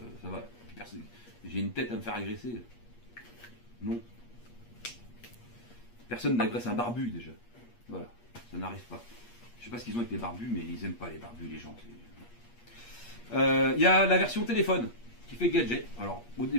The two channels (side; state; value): right; late; 8.4 ms